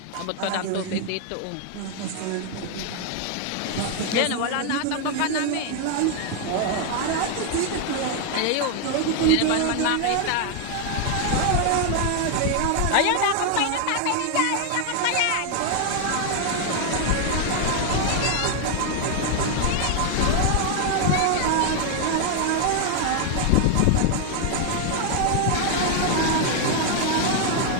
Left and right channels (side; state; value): both; different; correlation 0.00